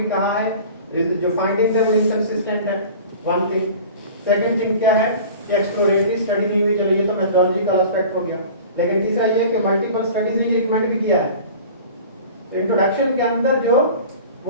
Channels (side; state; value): both; inverted; correlation -0.41